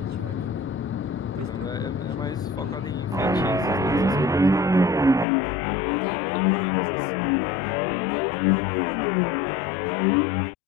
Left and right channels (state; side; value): drops out; right; at 5.2 s